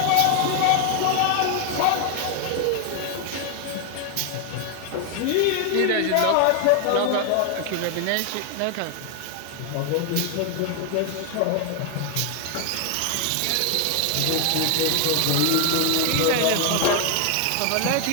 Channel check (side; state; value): both; different; correlation 0.00